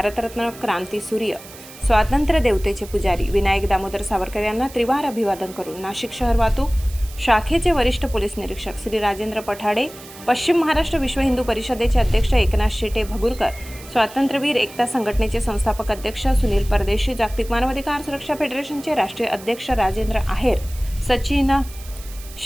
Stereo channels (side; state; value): right; noise; hiss, 18 dB below the sound